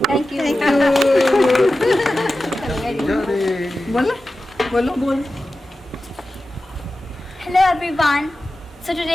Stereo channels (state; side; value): normal; both; correlation 0.94